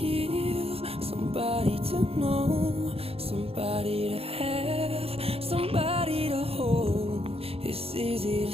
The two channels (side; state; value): left; late; 0.28 ms